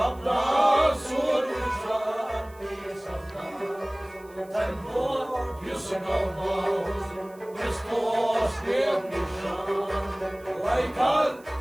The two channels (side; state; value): right; noise; hiss, 27 dB below the sound